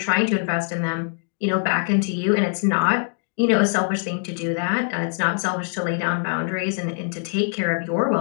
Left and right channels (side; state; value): right; silent; 56 dB below the other